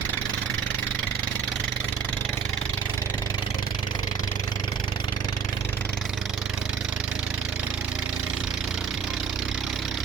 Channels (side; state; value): left; quieter; 6.5 dB